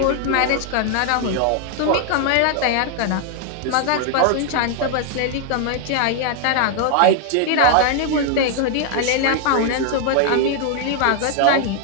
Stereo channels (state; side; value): different; both; correlation 0.00